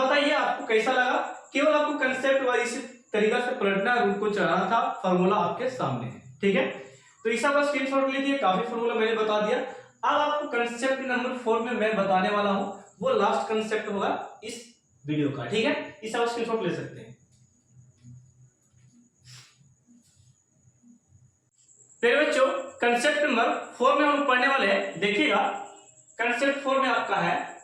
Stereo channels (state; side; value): identical; both; correlation 1.00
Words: आपको कैसा लगा, केवल आपको कंसेप्ट वाइज इसी तरीका से पलटना, रूट को चढ़ाना था, फॉर्मूला आपके सामने है। ठीक है, तो इस बार स्क्रीनशॉट लीजिए, काफी फॉर्मूला मैंने बता दिया। अब आपको कंसेप्ट नंबर 4 में मैं बताने वाला हूं, वो लास्ट कंसेप्ट होगा इस वीडियो का। ठीक है, इस बार स्क्रीनशॉट ले सकते हैं। मेरे बच्चों कंसेप्ट नंबर 4 में हम लोग पढ़ने वाले हैं। देखिएगा कंसेप्ट 4 में आपका है,